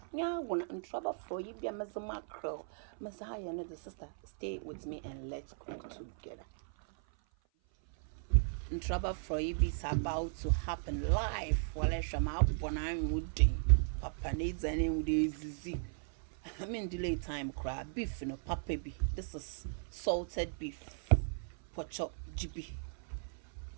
Yeah, when I'm in trouble for you, be a mackerel. Messiah, another sister, stay with me and let's cook together. In trouble for you is about to happen live. While I shall out when I'm woody. Papa needs any with easy. I'm in delay time crab beef in a papa be. This is salted beef. Pochop GB.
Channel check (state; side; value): silent; left; 53 dB below the other